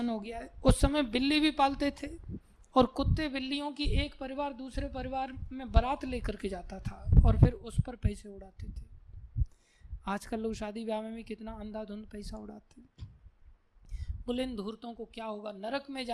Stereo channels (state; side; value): identical; both; correlation 1.00